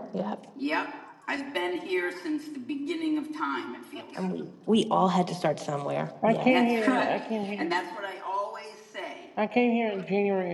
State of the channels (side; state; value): both; identical; correlation 1.00